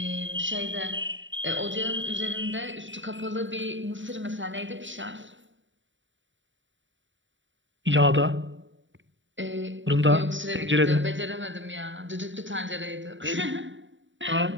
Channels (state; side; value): late; left; 0.55 ms